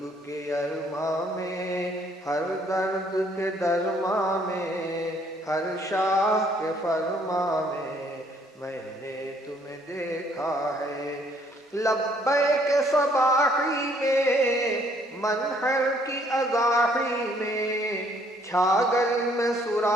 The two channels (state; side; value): normal; both; correlation 0.64